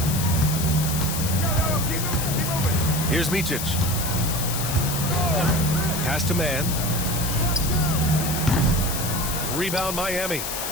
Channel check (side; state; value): left; noise; hiss, 4 dB below the sound